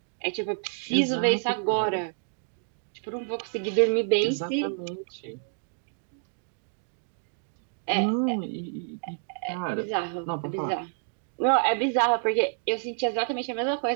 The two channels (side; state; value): left; silent; 59 dB below the other